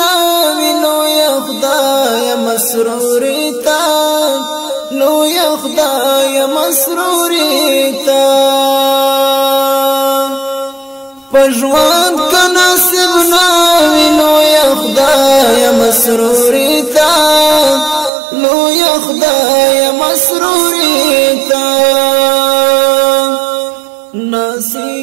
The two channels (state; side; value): drops out; left; at 18.1 s